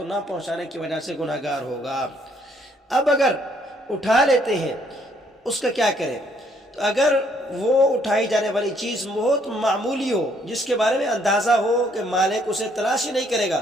نہ پہنچانے کی وجہ سے گناہ گار ہوگا۔ اب اگر اٹھا لیتے ہیں، اس کا کیا کریں؟ تو اگر وہ اٹھائی جانے والی چیز بہت معمولی ہو، جس کے بارے میں اندازہ ہو کہ مالک اسے تلاش ہی نہیں کرے گا،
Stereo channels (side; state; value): both; normal; correlation 0.67